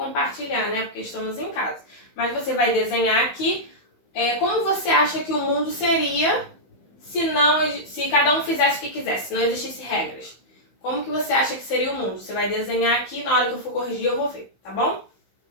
né? Porque estamos em casa. Mas você vai desenhar aqui como você acha que o mundo seria se cada um fizesse o que quisesse, se não existisse regras. Como que você acha que seria o mundo? Você vai desenhar aqui, na hora que eu for corrigir eu vou ver, tá bom?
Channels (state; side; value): late; right; 16 ms